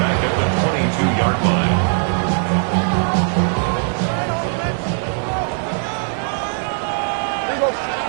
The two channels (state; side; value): silent; left; 57 dB below the other